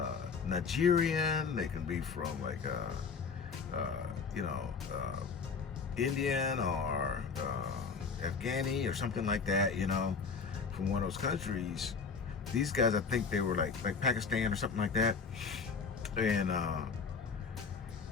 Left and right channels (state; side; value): quieter; right; 5.3 dB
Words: Nigerian, they can be from like Indian or Afghani or something like that, you know, from one of those countries. These guys, I think they were like Pakistan or something like that. And